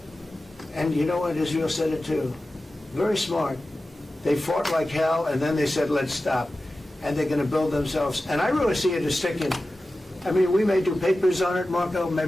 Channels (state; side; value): normal; both; correlation 0.94